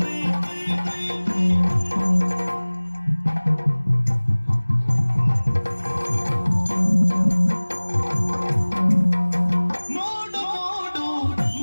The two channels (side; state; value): both; inverted; correlation -1.00